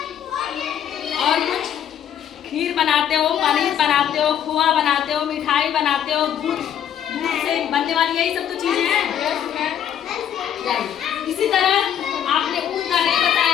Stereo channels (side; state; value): right; quieter; 9.6 dB